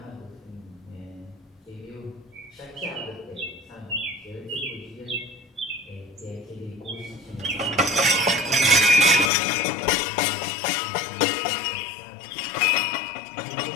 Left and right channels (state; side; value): drops out; right; at 9.3 s